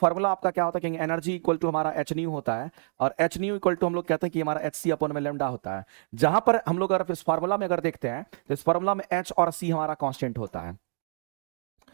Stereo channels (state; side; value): silent; left; digital silence